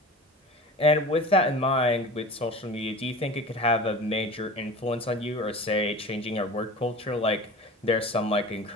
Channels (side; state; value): both; normal; correlation 0.36